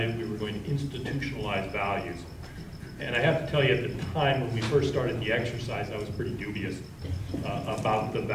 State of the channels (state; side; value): identical; both; correlation 1.00